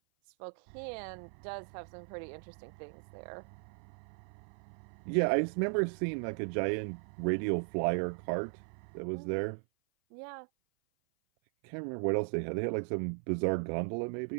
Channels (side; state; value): left; silent; 53 dB below the other